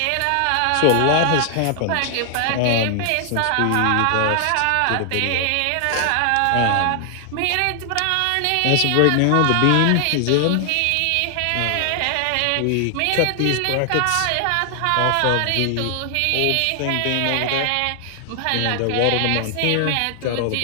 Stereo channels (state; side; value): different; both; correlation 0.00